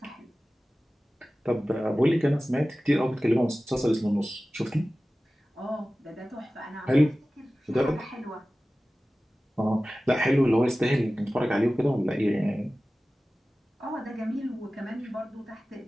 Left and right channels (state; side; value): normal; both; correlation 0.96